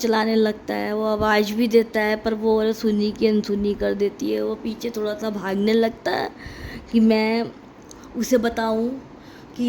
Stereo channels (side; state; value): both; identical; correlation 1.00